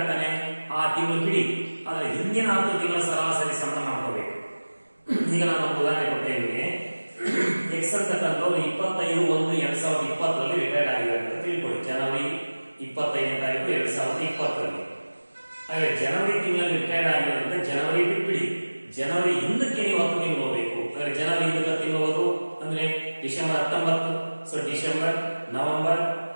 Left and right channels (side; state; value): both; inverted; correlation -1.00